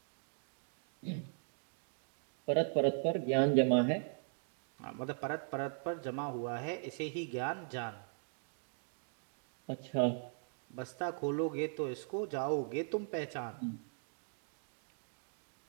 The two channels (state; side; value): silent; left; digital silence